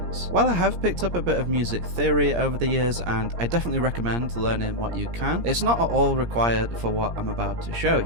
While I have picked up a bit of music theory over the years, and I definitely recommend learning what you can, it's not at all required for what I'm about to show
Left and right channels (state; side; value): late; left; 17 ms